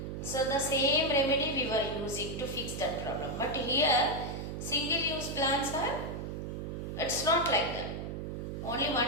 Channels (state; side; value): noise; right; hum, 5 dB below the sound